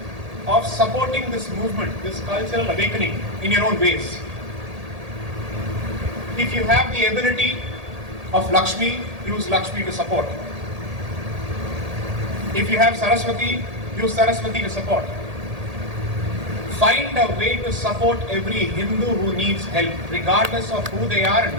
of supporting this movement, this cultural awakening in your own ways. If you have the ability of Lakshmi, use Lakshmi to support. If you have Saraswati, use Saraswati to support. Find a way to support every Hindu who needs help, regardless of who they are and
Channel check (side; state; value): left; late; 1.8 ms